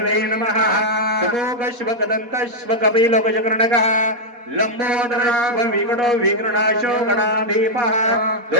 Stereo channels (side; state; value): left; late; 4.2 ms